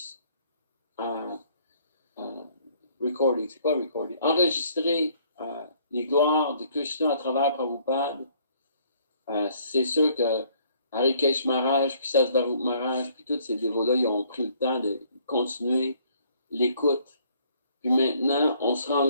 recording, c'est quoi recording? Enregistrer les gloires de Krishna à travers Prabhupada. C'est sûr que Harikesh Maharaj, puis Sasvarup Maharaj, puis tous ces dévots-là, ils ont pris le temps de continuer l'écoute. Puis maintenant, on se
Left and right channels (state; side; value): inverted; both; correlation -0.62